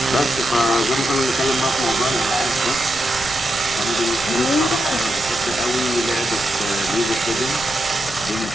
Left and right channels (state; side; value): noise; left; rumble, 16 dB below the sound